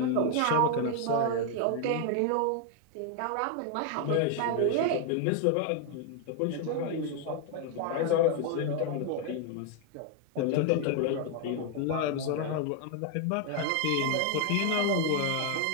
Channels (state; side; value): different; both; correlation 0.01